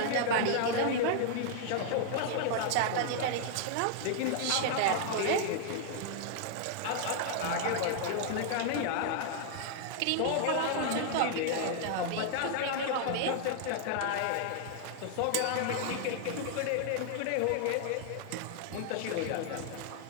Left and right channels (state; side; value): different; both; correlation 0.00